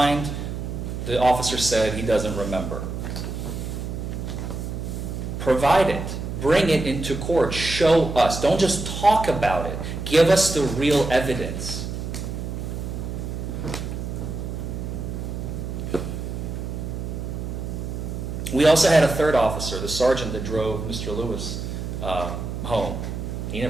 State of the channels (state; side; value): noise; right; hum, 5 dB below the sound